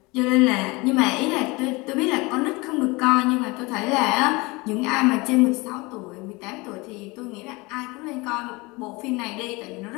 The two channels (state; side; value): quieter; right; 24.6 dB